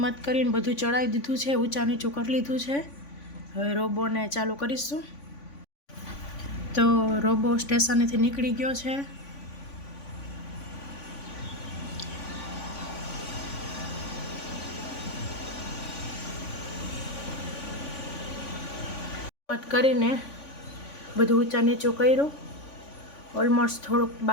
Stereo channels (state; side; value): late; right; 3.5 ms